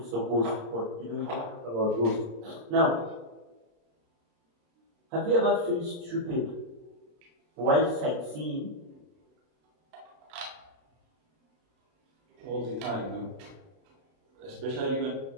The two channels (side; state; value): left; late; 32 ms